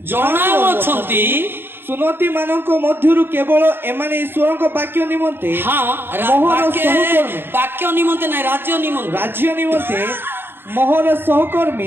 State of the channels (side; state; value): left; late; 0.10 ms